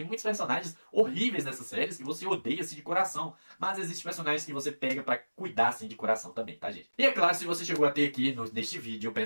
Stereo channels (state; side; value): inverted; both; correlation -1.00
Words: muitos personagens horríveis nessas séries que você odeia assim de coração, mas existem personagens que você pega pra cuidar assim de coração também, tá, gente? E é claro, se você chegou até aqui neste vídeo, eu